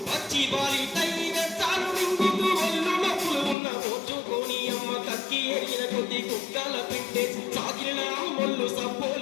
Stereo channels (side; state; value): right; drops out; at 3.6 s